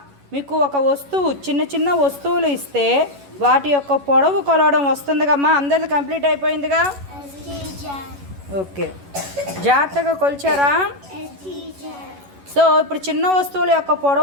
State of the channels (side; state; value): left; late; 11 ms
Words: మీకు ఒక వస్తువు చిన్న చిన్న వస్తువులు ఇస్తే వాటి యొక్క పొడవు కొలవడం వస్తుందిగమ్మా. అందరిది కంప్లీట్ అయిపోయిందిగా. ఓకే జాగ్రత్తగా కొలిచారా? సో ఇప్పుడు చిన్న వస్తువుల యొక్క